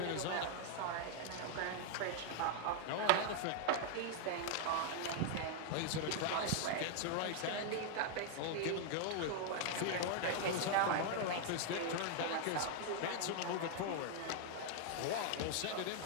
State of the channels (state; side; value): different; both; correlation 0.00